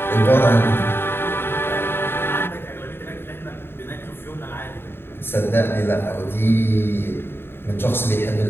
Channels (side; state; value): right; late; 0.11 ms